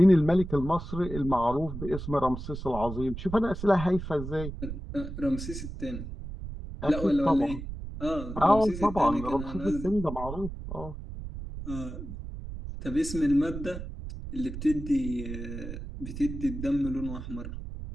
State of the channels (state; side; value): noise; right; rumble, 8 dB below the sound